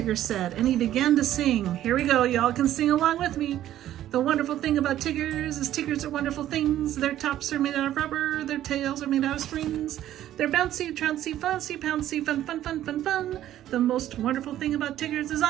said, and he began to sing. Here we go, y'all can sing along with me. "The wonderful thing about Tiggers is Tiggers are wonderful things. Their tops are made out of rubber, their tails are made out of springs. They're bouncy, trouncy, fussy, pouncy, fun, fun, fun, fun, fun. The most wonderful thing about Tiggers is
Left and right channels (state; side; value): quieter; left; 12.5 dB